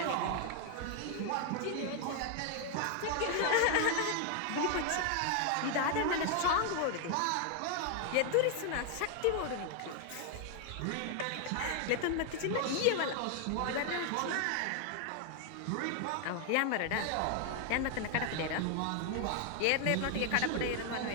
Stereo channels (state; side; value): different; both; correlation 0.00